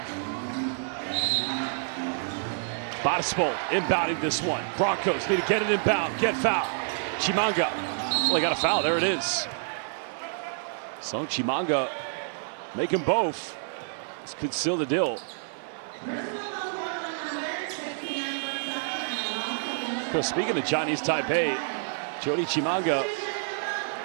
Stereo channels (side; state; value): left; silent; digital silence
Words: Batispol inbounding this one. Broncos need to get it inbound, get fouled. Chimanga. Well, they got a foul. There it is. So Chimanga make them both. This could seal the deal. Because speaking of Chinese Taipei, Jody Chimanga